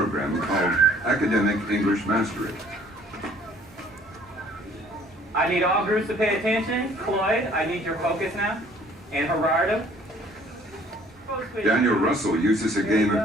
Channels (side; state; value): both; normal; correlation 0.57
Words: called Academic English Mastery. I need all groups to pay attention. Cloyd, I need your focus now. And Gerardo. Daniel Russell uses a game